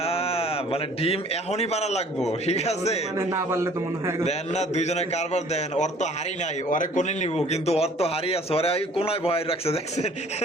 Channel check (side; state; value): both; normal; correlation 0.53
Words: মানে ডিম এখনই পারা লাগবো, ঠিক আছে? মানে না পারলে তো মনে হয় দেন না দুইজনে কারবার দেন। ওর তো হাড়ি নাই, ওরে কোনে নিব, কিন্তু ওর তো হাড়ি আছে, ওরে ওই কোনায় ভয় রাখছে দেখছেন